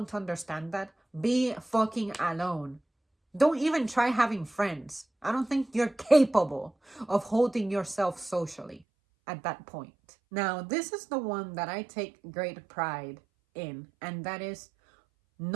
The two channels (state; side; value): drops out; left; at 8.8 s